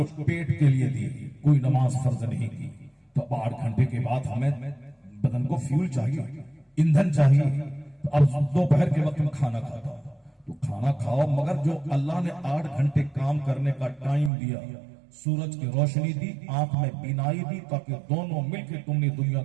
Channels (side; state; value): left; drops out; at 14.3 s